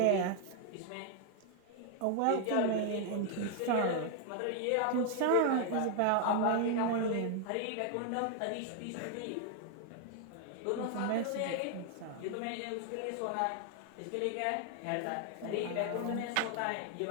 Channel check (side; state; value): both; different; correlation 0.00